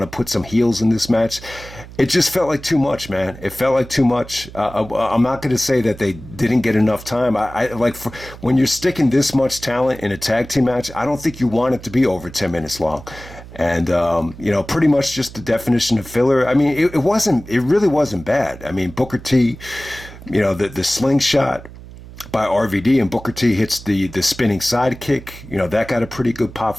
to put some heels in this match. It just felt like too much, man. It felt like too much. I'm not going to say that they didn't get enough time. When you're sticking this much talent in a tag team match, I don't think you want it to be over 10 minutes long. And, pretty much just the definition of filler. I mean, it really wasn't bad. I mean, Booker T, the slingshot by RVD, and Booker T hits the spinning sidekick. That got a pretty good pop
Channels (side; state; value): right; noise; hum, 16 dB below the sound